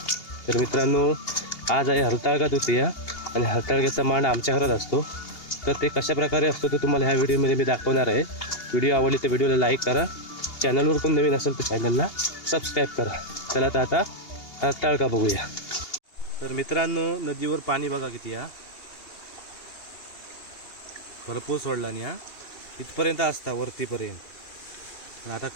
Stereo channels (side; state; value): right; late; 2.8 ms